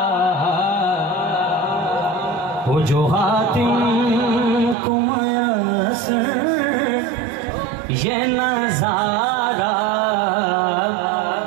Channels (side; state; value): left; drops out; at 4.8 s